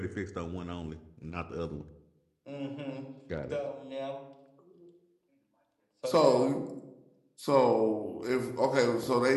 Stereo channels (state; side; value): identical; both; correlation 1.00